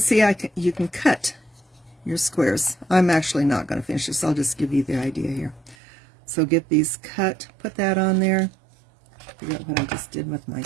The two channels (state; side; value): drops out; left; at 5.8 s